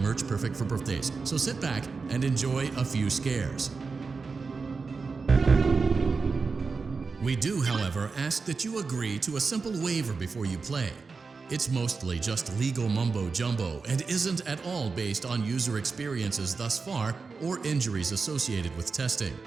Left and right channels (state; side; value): quieter; left; 4.6 dB